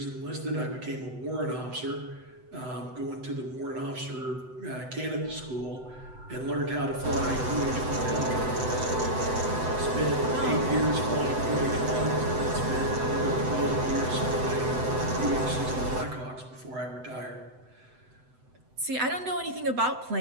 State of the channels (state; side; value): late; left; 7.9 ms